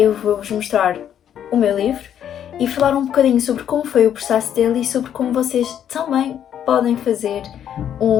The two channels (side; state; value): right; quieter; 9.7 dB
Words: vou-vos mostrar o meu livro e falar um bocadinho sobre como foi o processo dele e sobre como vocês também podem fazer